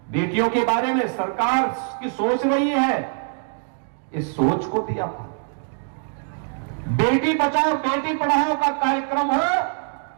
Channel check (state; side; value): silent; left; 63 dB below the other